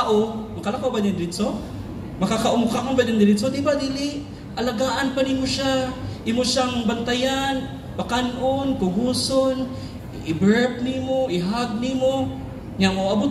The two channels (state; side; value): identical; both; correlation 1.00